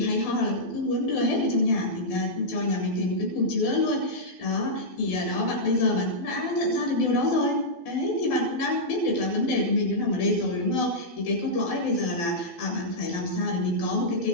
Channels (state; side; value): late; right; 12 ms